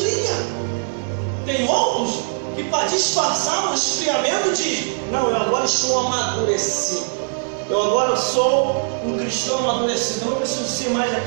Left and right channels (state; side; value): silent; left; 65 dB below the other